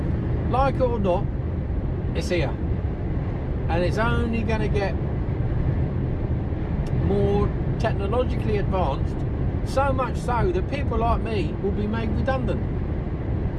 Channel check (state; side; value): identical; both; correlation 1.00